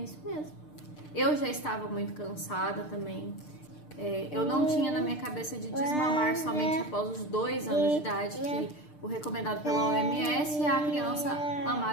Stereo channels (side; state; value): right; late; 6.7 ms